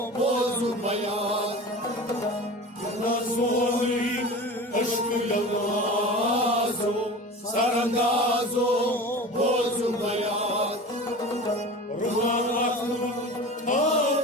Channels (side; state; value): both; normal; correlation 0.34